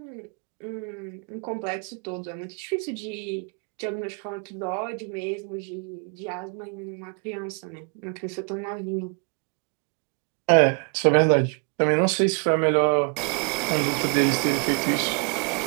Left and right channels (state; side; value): quieter; left; 36.6 dB